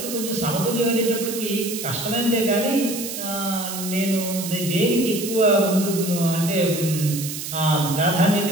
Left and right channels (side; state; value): right; noise; hiss, 7 dB below the sound